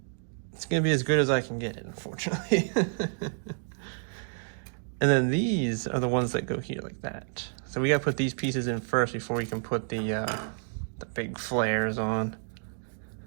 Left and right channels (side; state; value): left; silent; 58 dB below the other